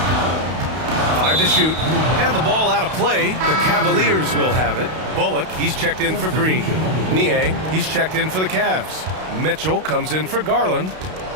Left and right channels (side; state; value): left; late; 32 ms